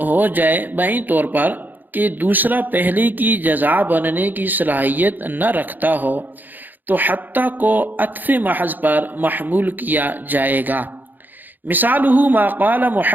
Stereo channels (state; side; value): late; left; 0.087 ms